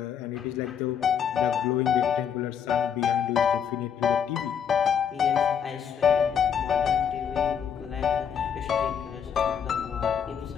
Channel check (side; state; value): right; quieter; 7.9 dB